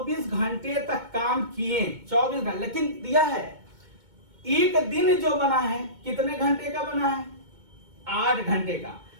घंटे तक काम किए, 24 घंटे। लेकिन दिया है एक दिन जो बना है कितने घंटे का बना है? 8 घंटे का।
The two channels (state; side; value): late; left; 2.2 ms